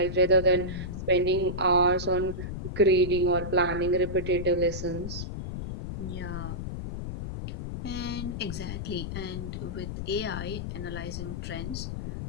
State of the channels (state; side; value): noise; left; rumble, 6 dB below the sound